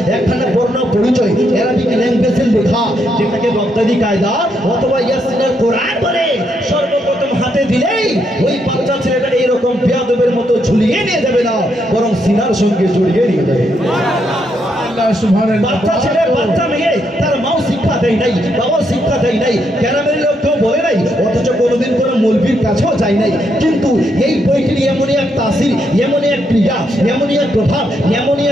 একখানা বর্ণ পরিচয় অ্যারাবিক ল্যাঙ্গুয়েজে লেখা যেটাকে বাগদাদি কায়দা অথবা ইয়াসিনের কোরআন বলে সর্বপ্রথম হাতে দিলেই ওই বাচ্চা ছেলেটা এইরকম বেয়াদবের মতো ঝুলিয়ে নিয়ে যাবে না, বরং সিনার সঙ্গে জড়িয়ে নিয়ে যাবে। বাচ্চা ছেলে বাচ্চা মেয়ে তার মাও শিক্ষা দেয় নাই, বাবাও শিক্ষা দেয় নাই, গ্রামের লোক কেউ বলে নাই, অথচ কোনোদিন কোনো মৌলবীর কাছেও যায় নাই। কিন্তু এই বইটির এমনই এক তাসির, এমনই এক ক্রিয়া, এমনই এক প্রভাব, এমনই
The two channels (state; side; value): normal; both; correlation 0.77